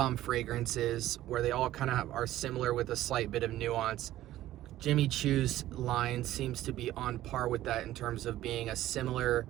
fragrances, where they all kind of are similar with a slight bit of nuance. Jimmy Choo's line seems to be on par with that in terms of being a similar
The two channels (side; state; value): left; quieter; 14.3 dB